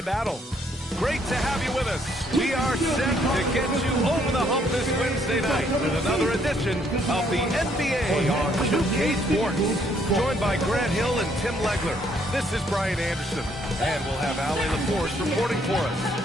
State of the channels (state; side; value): normal; both; correlation 0.68